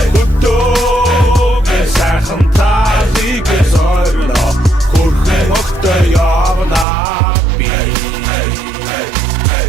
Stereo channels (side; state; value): left; drops out; at 6.9 s